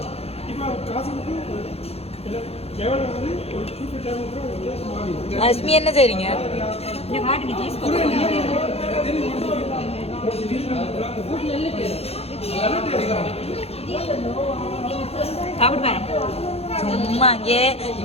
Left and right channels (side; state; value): right; late; 0.29 ms